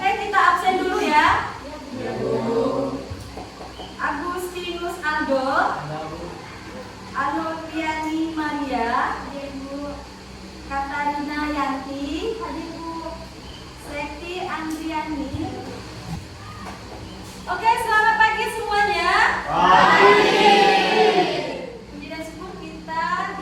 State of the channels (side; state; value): both; identical; correlation 1.00